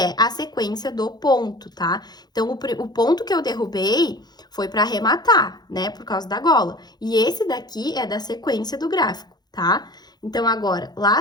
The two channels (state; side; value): late; right; 0.20 ms